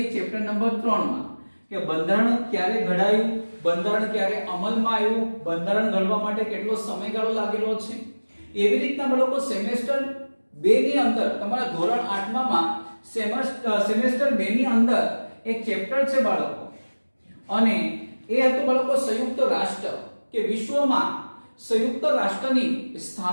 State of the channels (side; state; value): both; inverted; correlation -1.00